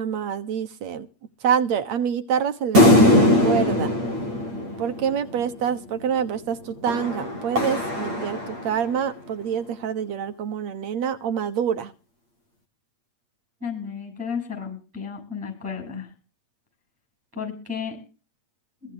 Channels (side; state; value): left; late; 8.6 ms